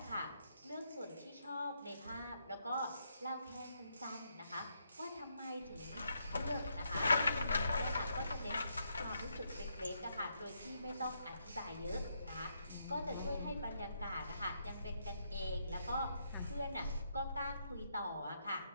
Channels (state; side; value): inverted; both; correlation -0.78